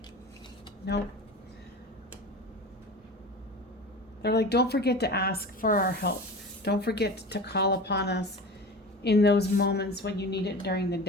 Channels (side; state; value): both; normal; correlation 0.33